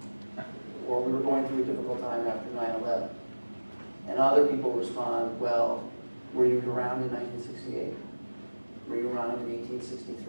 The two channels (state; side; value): inverted; both; correlation -1.00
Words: or we were going through a difficult time after 9/11. And other people respond, well, were you around in 1968? Were you around in